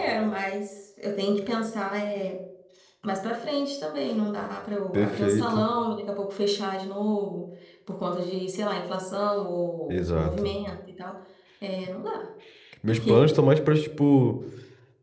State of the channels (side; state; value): both; identical; correlation 1.00